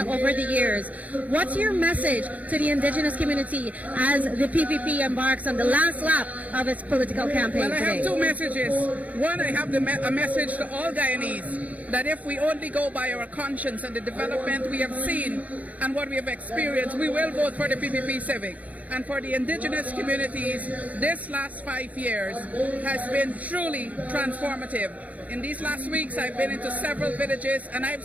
over the years. What's your message to the indigenous community as the PPP embarks on the last lap of its political campaign Well, I today? have two messages. One, I have a message to all Guyanese that if we only go by our conscience and the development we have seen and what we have experienced, we will vote for the PPP Civic. And for the indigenous communities, this last 5 years has been truly transformative. In these last weeks, I've been into several villages and I've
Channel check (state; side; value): late; left; 0.072 ms